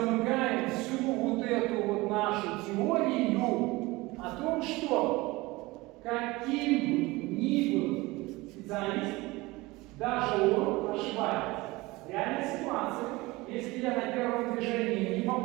всю вот эту вот нашу теорию о том, что каким бы ни был специалист, даже он ошибается. В реальной ситуации, если я на первом движении не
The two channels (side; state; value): left; quieter; 21.6 dB